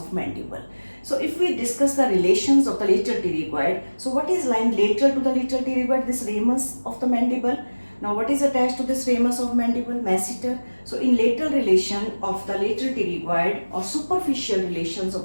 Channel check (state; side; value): inverted; both; correlation -1.00